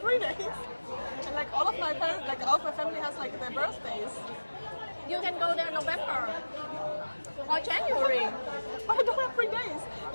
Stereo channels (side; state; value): both; inverted; correlation -1.00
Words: days. And like all of my parents, like all of my family has like their birthdays. You can go there November or January. But I don't have free days.